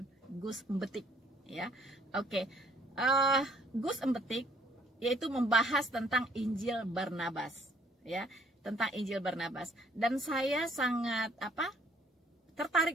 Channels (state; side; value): normal; both; correlation 0.62